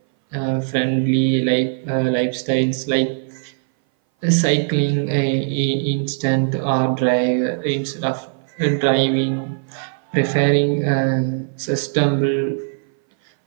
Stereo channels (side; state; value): left; silent; 60 dB below the other